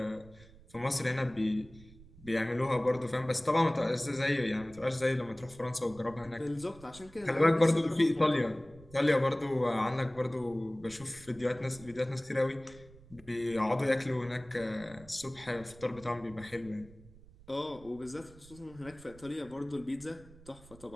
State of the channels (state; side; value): noise; right; rumble, 22 dB below the sound